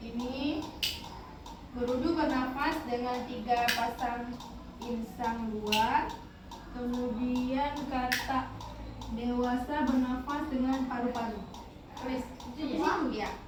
Ini berudu bernafas dengan 3 pasang insang luar. Kemudian kata dewasa bernafas dengan paru-paru. Tulis itu ya.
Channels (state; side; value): identical; both; correlation 1.00